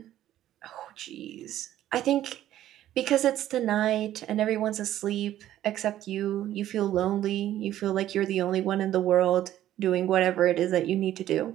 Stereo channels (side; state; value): left; quieter; 12.7 dB